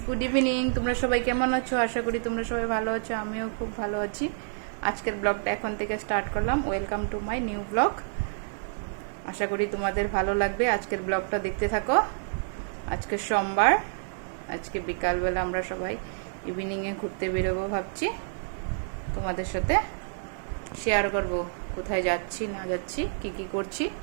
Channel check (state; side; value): silent; left; digital silence